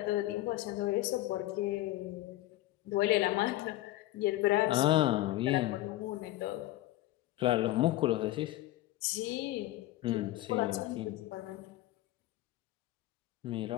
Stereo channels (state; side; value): quieter; right; 16.1 dB